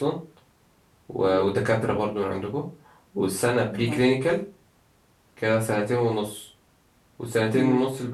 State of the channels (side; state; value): both; identical; correlation 1.00